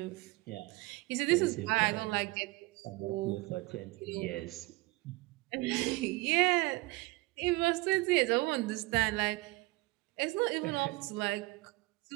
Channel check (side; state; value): left; quieter; 22.5 dB